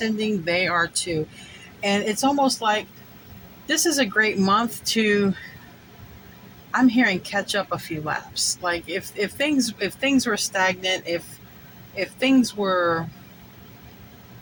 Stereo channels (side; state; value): both; identical; correlation 1.00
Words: they are too. And it's almost like this is a great month to, I'm hearing, catch up a few laps. Like if things were stagnant, if things were